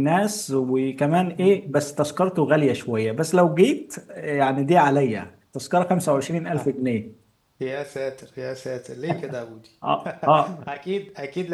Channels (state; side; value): identical; both; correlation 1.00